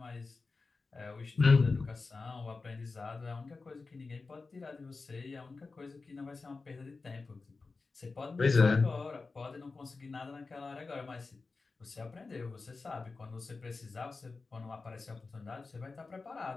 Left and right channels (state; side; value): quieter; right; 4.0 dB